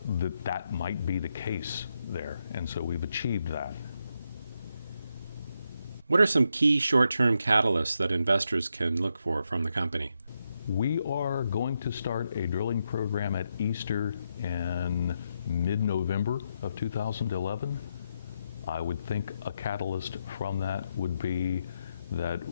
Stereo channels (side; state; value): both; inverted; correlation -0.83